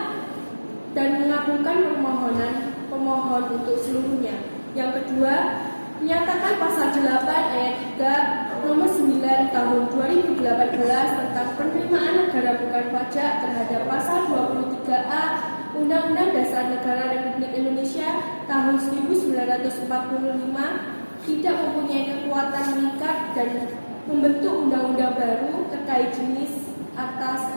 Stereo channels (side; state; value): both; inverted; correlation -1.00